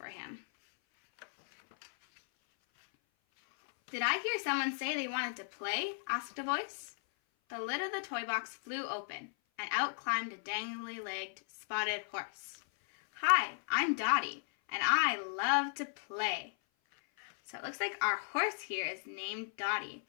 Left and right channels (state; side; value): silent; right; 54 dB below the other